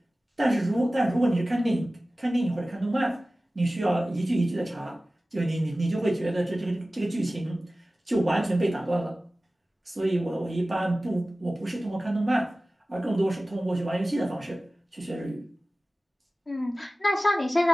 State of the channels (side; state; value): both; normal; correlation 0.97